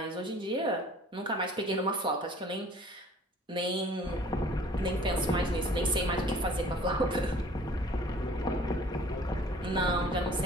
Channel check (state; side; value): normal; both; correlation 0.51